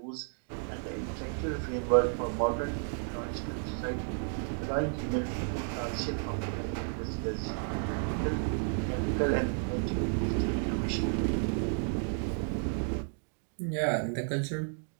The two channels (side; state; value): left; silent; 56 dB below the other